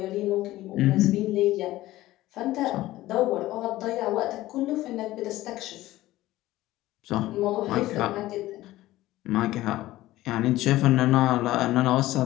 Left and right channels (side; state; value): right; quieter; 16.3 dB